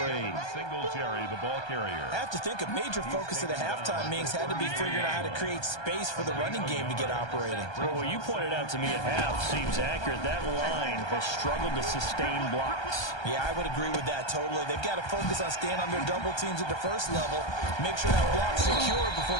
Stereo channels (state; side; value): late; right; 1.3 ms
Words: Singletary, the ball carrier. I have to think a major focus of the halftime meetings had to be figuring out how to create space for the running game to get operating. Well, what you pointed out to me at half seems accurate. That line has struggled to sustain blocks. Yeah, I would agree with that totally. They've got to focus on staying on their double teams at the first level, make sure that block's secure before